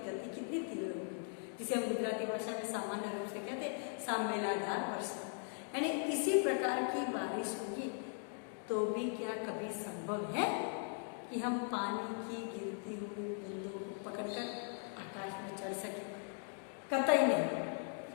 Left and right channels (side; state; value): right; silent; 51 dB below the other